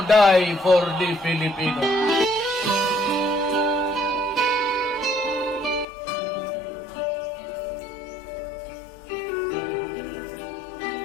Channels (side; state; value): right; drops out; at 5.9 s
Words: die for the Filipino.